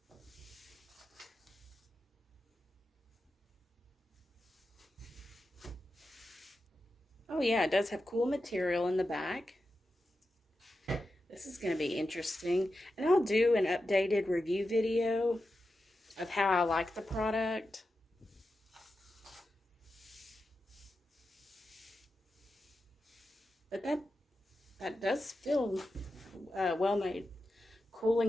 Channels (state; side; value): normal; both; correlation 0.90